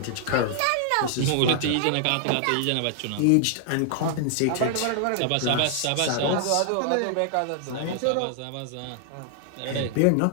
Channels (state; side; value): different; both; correlation -0.01